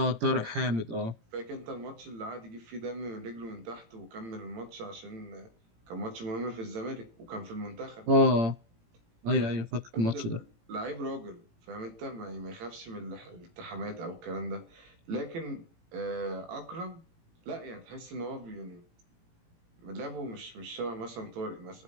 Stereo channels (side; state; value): left; late; 18 ms